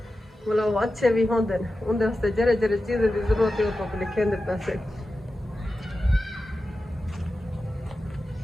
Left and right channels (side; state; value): both; normal; correlation 0.92